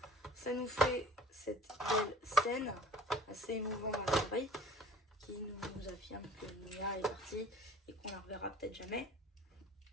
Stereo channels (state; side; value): normal; both; correlation 0.48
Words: ça nous fait cette belle scène assez émouvante à l'oreille qui nous affirme que Nia est partie et qu'on la reverra peut-être jamais.